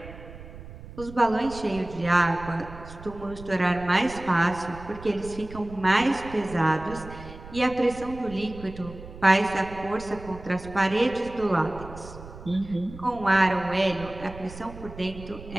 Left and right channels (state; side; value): noise; right; rumble, 15 dB below the sound